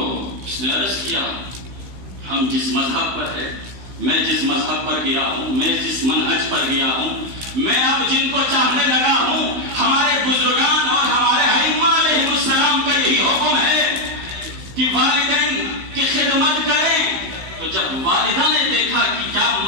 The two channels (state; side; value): late; left; 16 ms